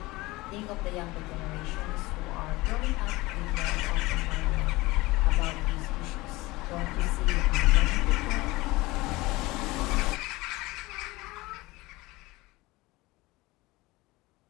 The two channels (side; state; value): right; quieter; 20.9 dB